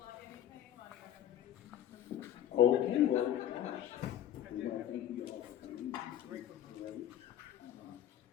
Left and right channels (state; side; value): quieter; right; 11.1 dB